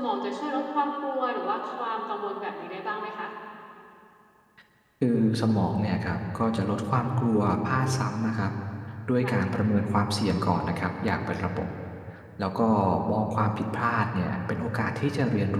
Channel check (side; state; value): both; identical; correlation 1.00